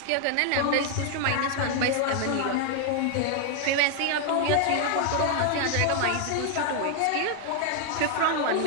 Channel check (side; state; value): both; different; correlation 0.00